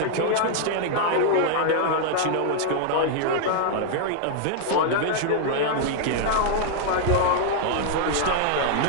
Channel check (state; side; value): different; both; correlation 0.00